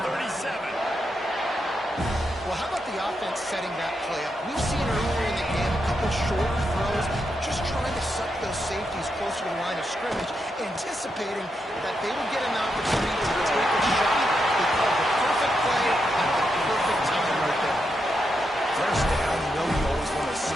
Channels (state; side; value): normal; both; correlation 0.84